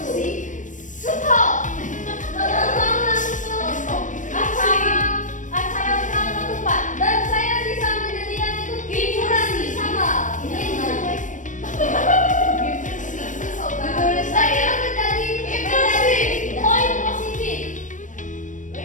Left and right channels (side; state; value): right; late; 0.37 ms